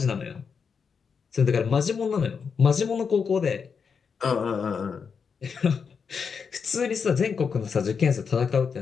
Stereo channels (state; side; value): quieter; right; 6.1 dB